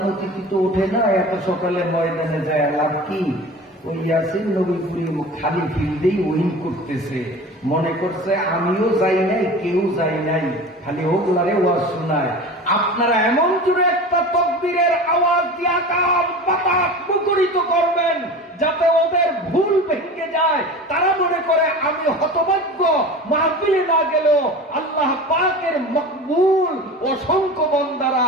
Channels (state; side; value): normal; both; correlation 0.35